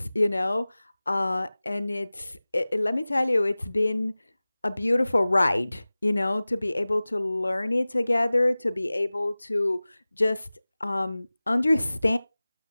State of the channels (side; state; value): both; inverted; correlation -0.98